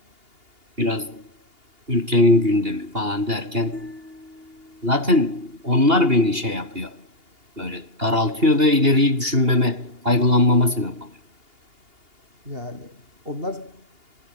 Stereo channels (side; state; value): left; late; 2.8 ms